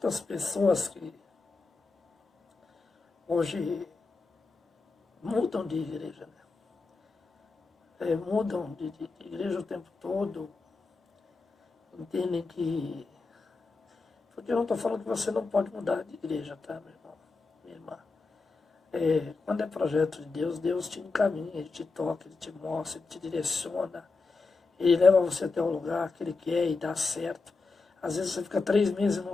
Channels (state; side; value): quieter; right; 4.0 dB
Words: pessoas que hoje mudam de igreja, mudam de igreja o tempo todo, entendem que... Porque eu não estou falando que você não pode mudar de igreja, tá, meu irmão, minha irmã? Quando é projeto de Deus, Deus te encaminha, Ele te toca, Ele te mostra, Ele te direciona, Ele leva você até o lugar que Ele quer e dá certo. Às vezes você fica 3 meses num